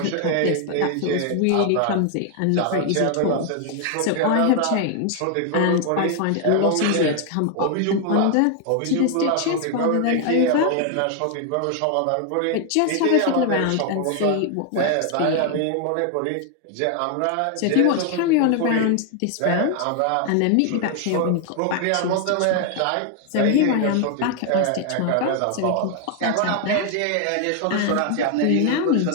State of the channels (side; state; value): both; different; correlation 0.00